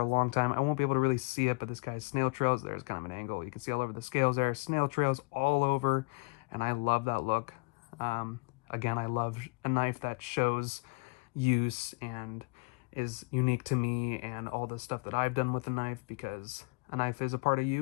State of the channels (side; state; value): right; quieter; 29.7 dB